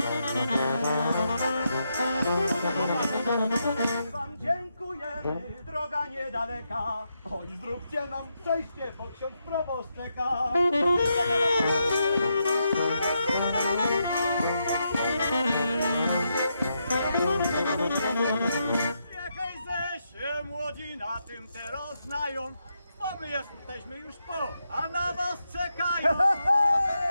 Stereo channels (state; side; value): inverted; both; correlation -0.82